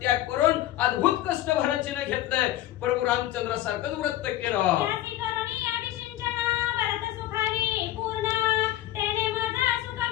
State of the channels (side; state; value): right; quieter; 14.1 dB